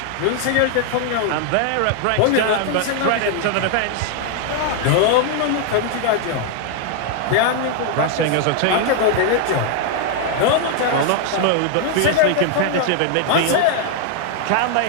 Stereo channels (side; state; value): both; different; correlation 0.00